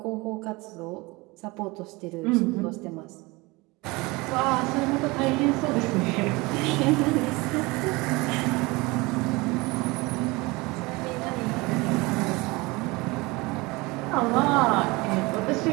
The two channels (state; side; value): quieter; left; 23.8 dB